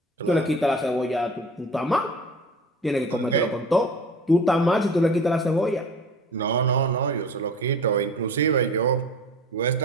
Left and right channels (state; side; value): normal; both; correlation 0.40